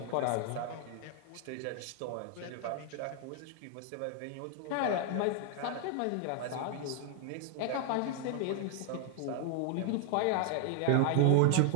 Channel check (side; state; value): both; different; correlation 0.00